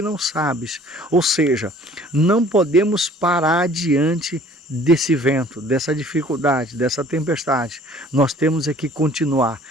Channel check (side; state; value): both; normal; correlation 0.52